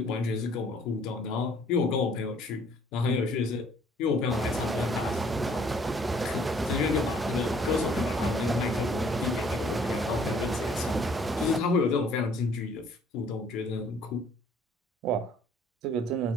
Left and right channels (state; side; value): normal; both; correlation 0.59